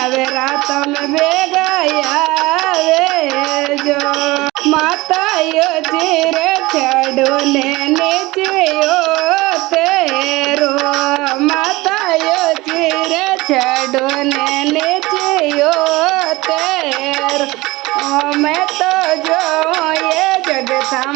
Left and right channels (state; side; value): quieter; left; 20.9 dB